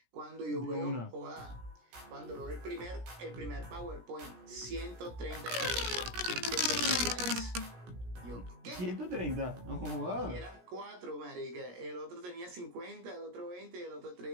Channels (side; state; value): left; late; 17 ms